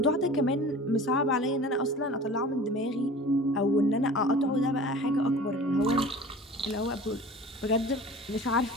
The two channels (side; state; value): both; normal; correlation 0.41